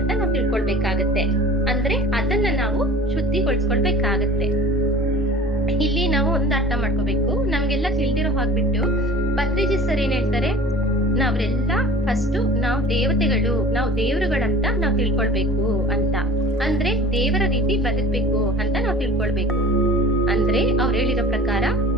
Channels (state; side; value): normal; both; correlation 0.43